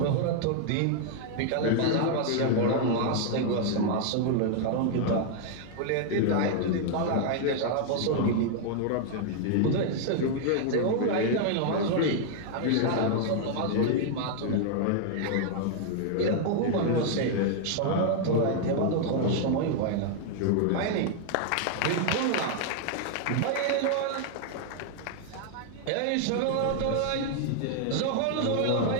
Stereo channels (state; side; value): different; both; correlation 0.00